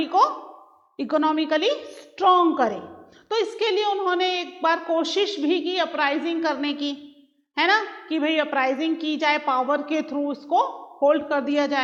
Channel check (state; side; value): identical; both; correlation 1.00